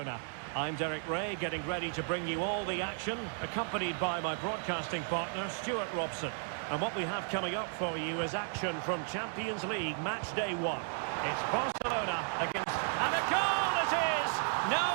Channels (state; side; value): silent; left; 55 dB below the other